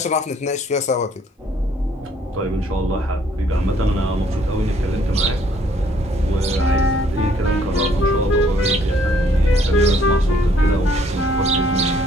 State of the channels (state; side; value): normal; both; correlation 0.63